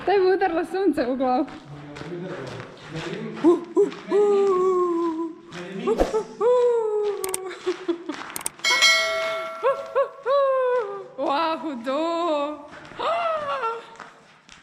Daj bi udarilo sunce u glavu.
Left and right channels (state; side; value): identical; both; correlation 1.00